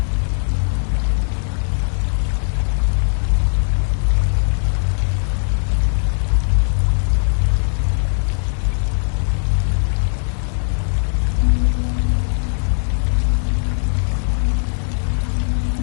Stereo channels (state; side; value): silent; right; digital silence